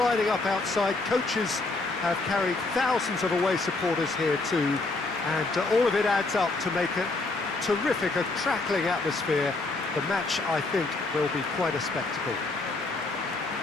up outside. Coaches have carried thousands of away supporters here too, and all of it adds up to make it terrific, a crackling atmosphere. The match, I think, will be quite a spectacle.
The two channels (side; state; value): right; quieter; 3.3 dB